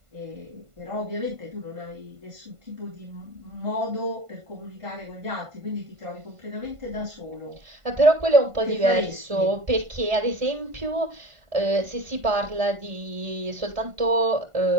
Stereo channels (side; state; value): left; late; 1.5 ms